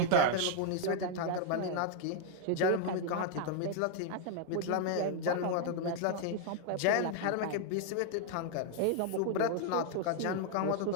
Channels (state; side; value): different; both; correlation 0.00